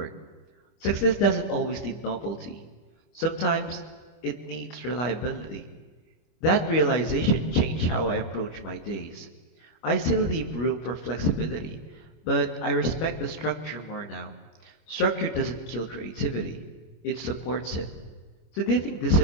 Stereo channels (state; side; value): late; right; 25 ms